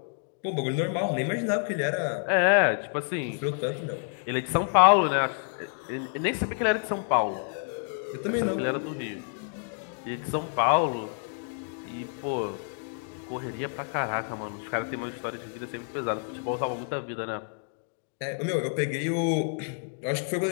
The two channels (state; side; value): silent; right; 59 dB below the other